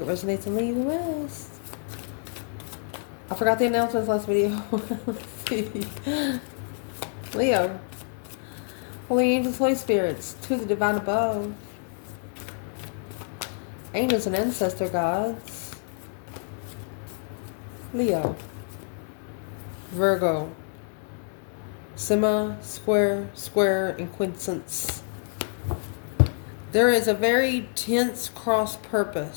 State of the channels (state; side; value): silent; right; 60 dB below the other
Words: it resonates and leave the rest. I forgot the announcements last video. Let's see. Leo. Holy angels, Holy spirits, to the divine above. Angels and ancestor gods. Leo. Virgo. Sema, square, square, and quincunx. There is a very tense cross